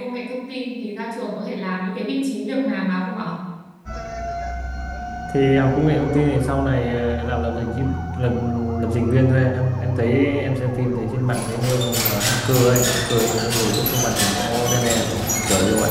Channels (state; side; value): identical; both; correlation 1.00